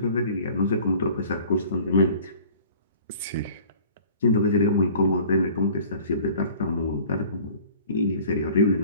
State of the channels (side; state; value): both; inverted; correlation -0.48